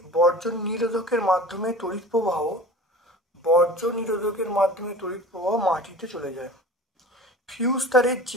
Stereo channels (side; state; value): both; normal; correlation 0.39